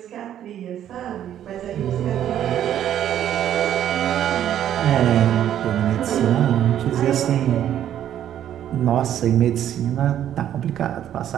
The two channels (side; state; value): left; quieter; 10.8 dB